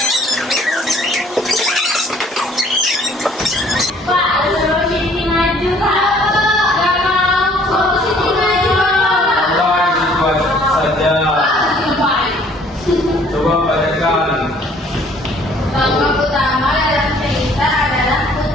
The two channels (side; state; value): both; normal; correlation 0.58